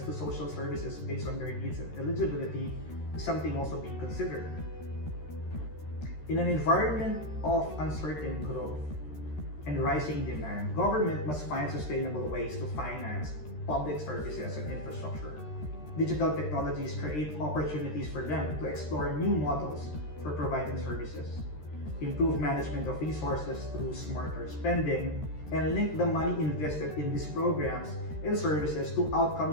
to social services based on their needs and eligibility is something also being considered. In an environment of uncertain growth and rising demand, government must find sustainable ways to finance public services and infrastructure. Digital technologies create opportunities for them to explore new models for providing services, improve management of resources through smarter spending, and link the money invested in these programs and services to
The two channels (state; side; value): late; right; 13 ms